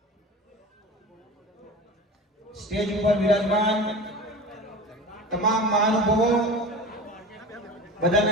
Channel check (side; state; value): both; normal; correlation 0.33